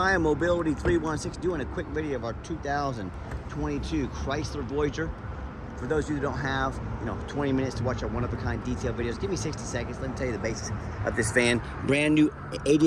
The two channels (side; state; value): both; identical; correlation 1.00